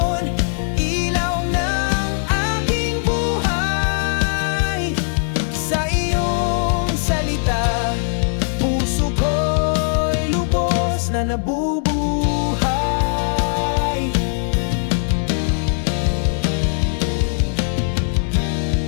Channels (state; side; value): silent; right; 63 dB below the other